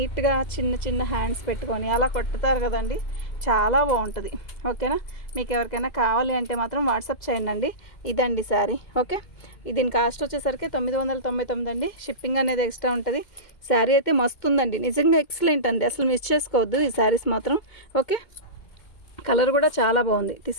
చిన్న చిన్న హ్యాండ్స్ పెట్టుకొని అలా కొట్టుతారు కదండి, చాలా బాగుంటుంది. ఓకేనా. మీకు ఎవరికైనా కావాలి అంటే మాత్రం వాట్సాప్ చేయండి. ఇదండి శారీ. ఓకే, దీని కాస్ట్ వచ్చేసరికి 999 అండి. షిప్పింగ్ అనేది ఎక్స్ట్రా ఉంటుంది. శారీ అయితే మస్తు ఉందండి, నిజంగా ఎక్సలెంట్ అండి, అసలు మిస్ చేసుకోవద్దు ఈ శారీస్ మాత్రం. ఓకే, కలర్ కూడా చాలా బాగుంది,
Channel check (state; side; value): late; right; 2.2 ms